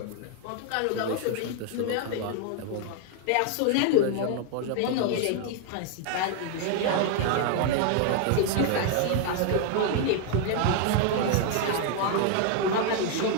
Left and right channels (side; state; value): both; different; correlation 0.00